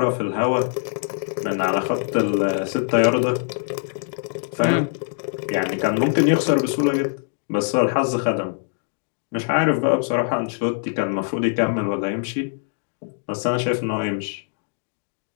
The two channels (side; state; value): right; silent; digital silence